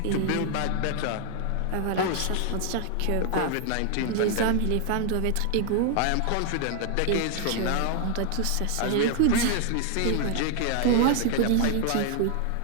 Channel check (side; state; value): both; different; correlation 0.00